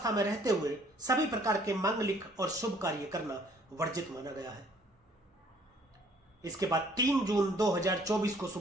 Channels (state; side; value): normal; both; correlation 0.60